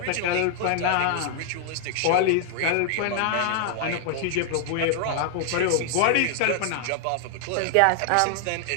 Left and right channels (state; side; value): different; both; correlation 0.00